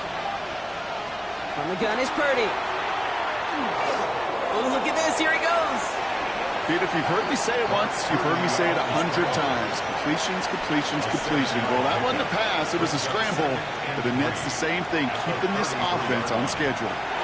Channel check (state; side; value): identical; both; correlation 1.00